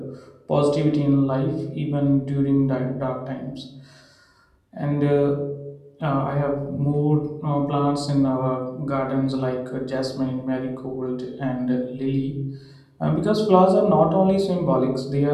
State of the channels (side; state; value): both; identical; correlation 1.00